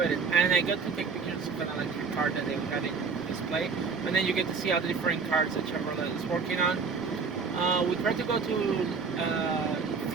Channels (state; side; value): quieter; left; 5.1 dB